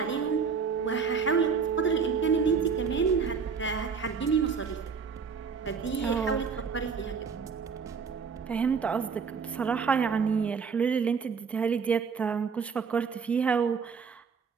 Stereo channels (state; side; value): quieter; left; 5.8 dB